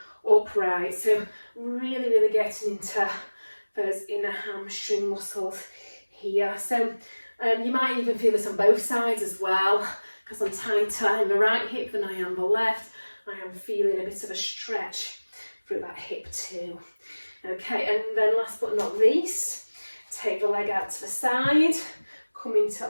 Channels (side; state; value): both; inverted; correlation -1.00